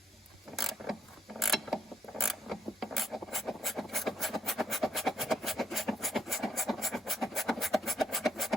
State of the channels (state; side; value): normal; both; correlation 0.74